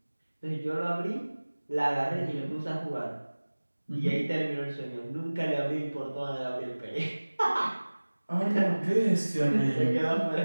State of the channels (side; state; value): both; inverted; correlation -1.00